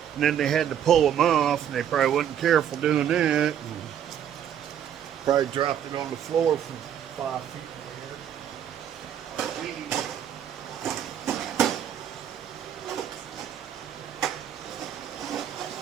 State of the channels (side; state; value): left; quieter; 9.6 dB